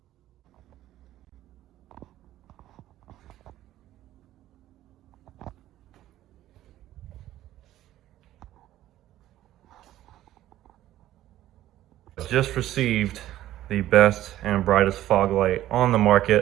Just received the best and brightest fog light on the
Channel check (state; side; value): quieter; left; 13.8 dB